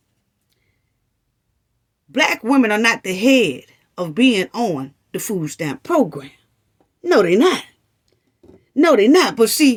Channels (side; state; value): both; identical; correlation 1.00